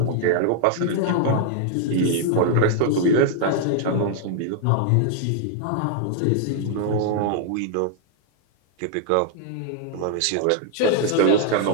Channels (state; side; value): different; both; correlation -0.01